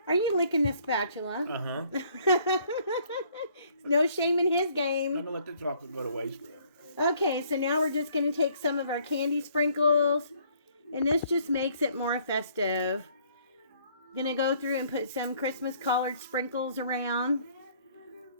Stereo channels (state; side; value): inverted; both; correlation -0.63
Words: Are you licking the spatula? Uh-huh. No shame in his game. I'm going to let the chocolate go to waste. Okay, so now we're just going to take some of our candy sprinkles. And this just makes it more festive. Going to go through and put some Christmas colored sprinkles around.